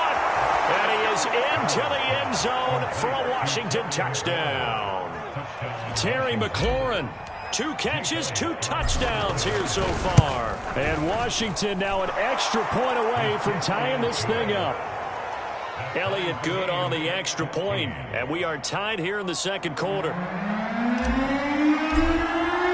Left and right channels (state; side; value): identical; both; correlation 1.00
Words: And he is into the end zone for a Washington touchdown. Terry McLaurin, 2 catches, 2 touchdowns here so far. And Washington now an extra point away from tying this thing up. Elliott good on the extra point, and we are tied here in the 2nd quarter.